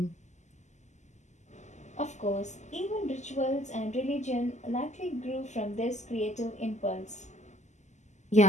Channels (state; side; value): late; right; 0.34 ms